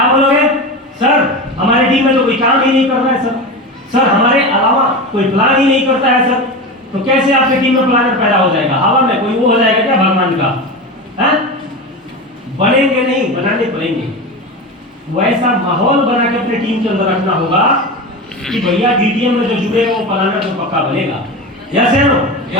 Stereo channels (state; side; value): normal; both; correlation 0.24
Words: बोलोगे? सर हमारी टीम में तो कोई काम ही नहीं कर रहा है सर। सर हमारे अलावा कोई प्लान ही नहीं करता है सर। तो कैसे आपकी टीम में प्लानर पैदा हो जाएगा? हवा में कोई वो हो जाएगा क्या भगवान का? है? बनेंगे नहीं, बनाने पड़ेंगे। वैसा माहौल बना के अपने टीम के अंदर रखना होगा कि भैया डीटीएम में जो जुड़े वो प्लानर तो पक्का बनेगा। यस है नो?